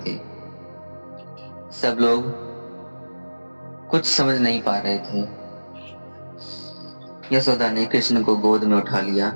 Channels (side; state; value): both; inverted; correlation -1.00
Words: थे। सब लोग कुछ समझ नहीं पा रहे थे। यशोदा ने कृष्ण को गोद में उठा लिया।